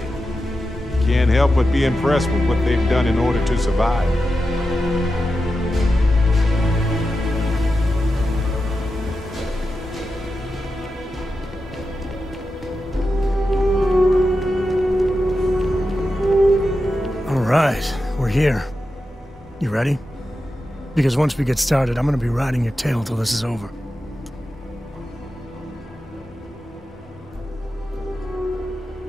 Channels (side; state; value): both; normal; correlation 0.90